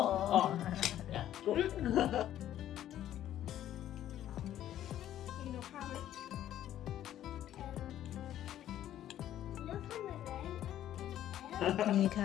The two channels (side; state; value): right; quieter; 11.9 dB